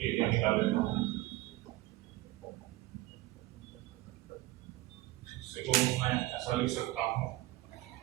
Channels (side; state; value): left; quieter; 17.5 dB